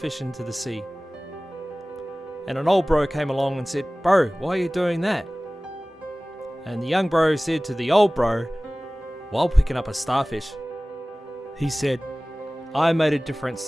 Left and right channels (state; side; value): normal; both; correlation 0.98